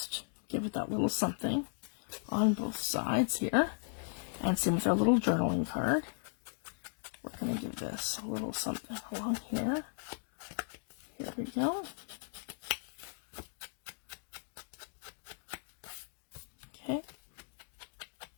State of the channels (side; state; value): right; silent; digital silence